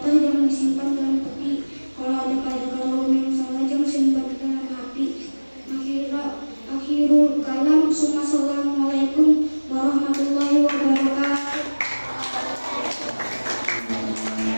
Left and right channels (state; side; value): inverted; both; correlation -1.00